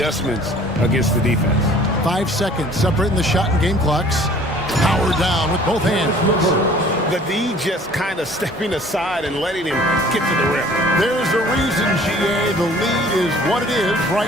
against the defense. 5 seconds separating the shot and game clocks. Power down with both hands. The D just kind of stepping aside and letting him get to the rim. There's a reason, GA, the lead is what it is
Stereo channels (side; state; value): both; normal; correlation 0.52